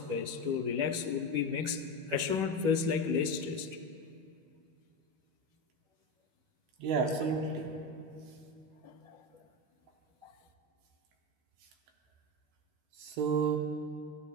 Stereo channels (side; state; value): left; late; 12 ms